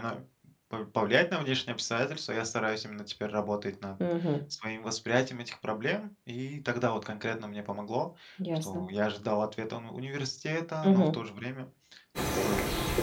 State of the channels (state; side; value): identical; both; correlation 1.00